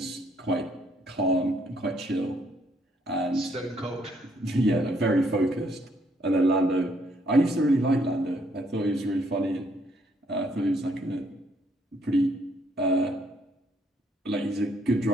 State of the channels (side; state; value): both; normal; correlation 0.69